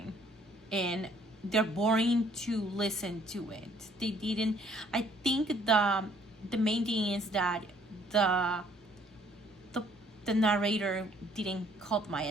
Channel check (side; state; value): both; normal; correlation 0.61